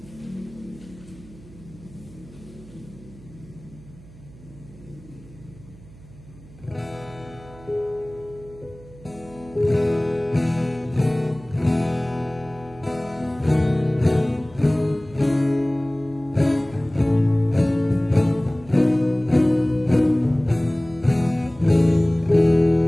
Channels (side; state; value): right; noise; hum, 21 dB below the sound